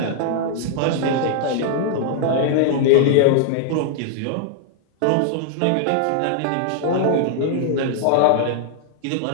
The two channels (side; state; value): both; different; correlation -0.01